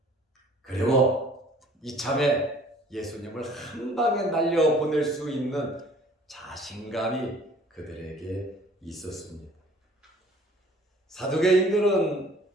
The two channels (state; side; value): normal; both; correlation 0.53